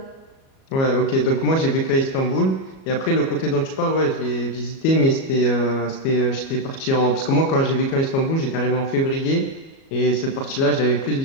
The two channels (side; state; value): right; late; 37 ms